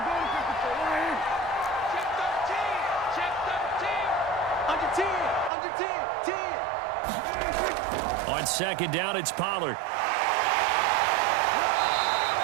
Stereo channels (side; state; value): left; drops out; at 5.5 s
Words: On 2nd down, it's Pollard.